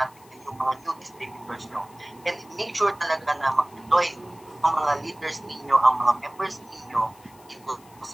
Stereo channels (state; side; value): noise; left; hiss, 26 dB below the sound